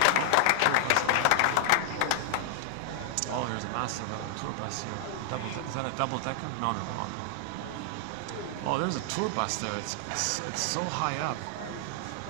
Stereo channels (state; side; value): different; both; correlation 0.00